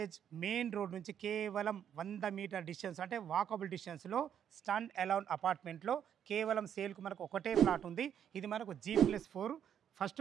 మెయిన్ రోడ్ నుంచి కేవలం 100 మీటర్ డిస్టెన్స్, అంటే వాకబుల్ డిస్టెన్స్లో స్టాండ్ అలోన్ అపార్ట్మెంట్లో కేవలం సేల్కు మనకు ఒకటే ప్లాట్ ఉంది. ఇది మనకు G+4 ఫస్ట్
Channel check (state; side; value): quieter; left; 9.1 dB